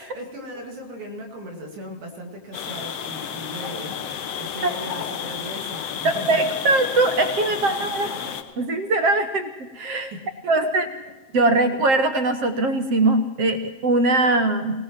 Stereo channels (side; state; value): left; late; 7.5 ms